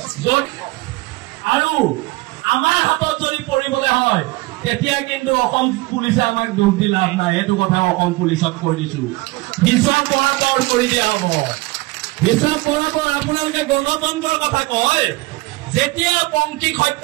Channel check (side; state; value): left; quieter; 22.0 dB